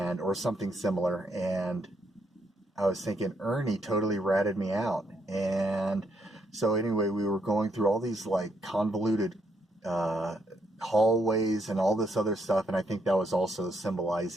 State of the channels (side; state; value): both; normal; correlation 0.75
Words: or something similar. And I was thinking Ernie totally ratted me out. And so anyway, we were going through all these like convoluted uh, hallways and all this other stuff. And I think that was also